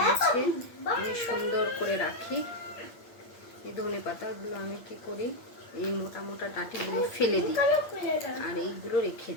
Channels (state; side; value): late; right; 8.7 ms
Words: আমি সুন্দর করে রাখি। এই ধনে পাতাগুলো আমি কি করি, এই মোটা মোটা ডাঁটিগুলো ফেলে দিই আর এইগুলো রেখে